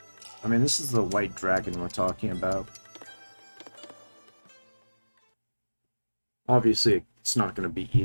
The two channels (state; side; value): inverted; both; correlation -1.00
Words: I mean, this is the white dragon we're talking about. Obviously, it's not going to be